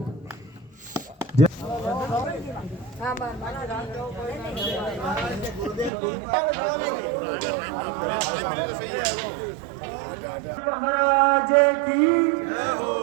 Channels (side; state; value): left; drops out; at 5.9 s